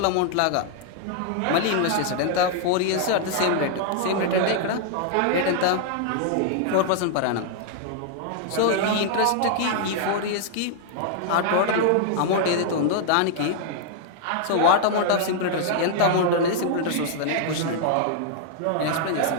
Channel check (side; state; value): both; different; correlation 0.00